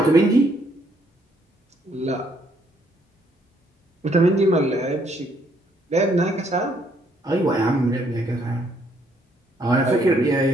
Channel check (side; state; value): both; normal; correlation 0.69